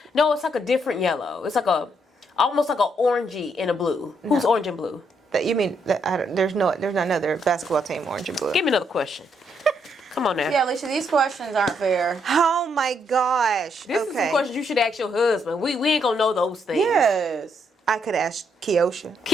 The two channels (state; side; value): normal; both; correlation 0.75